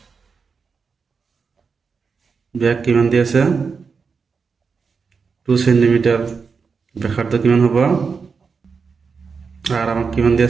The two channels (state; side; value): quieter; left; 5.3 dB